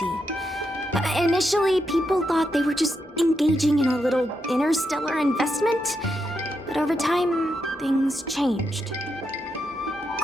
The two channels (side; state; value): both; normal; correlation 0.83